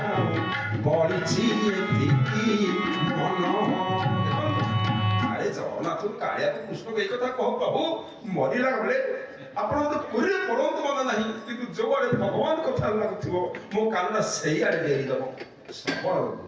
ବଳିଛି ଏତିକି ମନ। ଆରେ ଜଗନ୍ନାଥ କାଳିଆକୁ କୃଷ୍ଣ ଏଇ କଥା କହ, ପ୍ରଭୁ ମରିଲା ବେଳେ ଆପଣ ତ ପୁରୀରେ ପଡ଼ନ୍ତୁ ମନେ ନାହିଁ, କିନ୍ତୁ ଯୋଉଆଡେ ଭଗବାନ କଥା ଲାଗୁଥିବ ମୋ କାନଟା ସେଇଆଡେ ଦେଇଦବ।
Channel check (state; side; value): identical; both; correlation 1.00